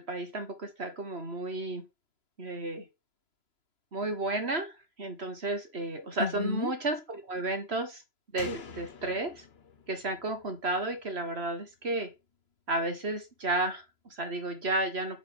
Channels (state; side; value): late; left; 3.0 ms